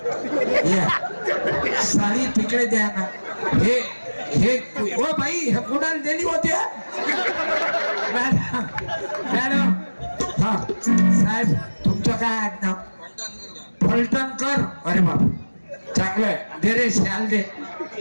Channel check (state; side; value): inverted; both; correlation -1.00